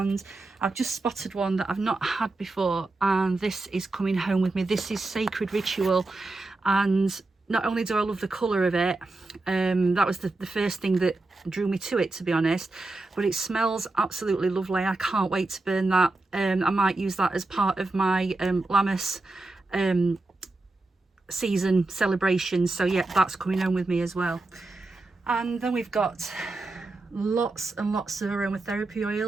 I've just spotted one that I've not had before, and this is coming home with me. This is Sacred Ritual, and not only do I love the colour of it, that was the first thing that drew me to it, to be honest, but it smells absolutely lovely. I can't wait to burn that. I might use that as part of my Lammas season celebrations. So yeah, that's coming home with me as well. And then we've got lots and lots of aromatherapy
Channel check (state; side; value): quieter; left; 3.1 dB